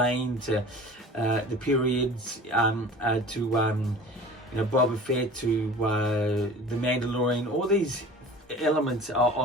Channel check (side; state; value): both; normal; correlation 0.41